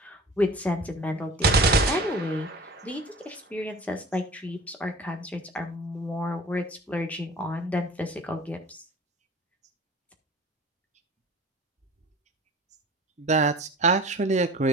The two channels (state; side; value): normal; both; correlation 0.41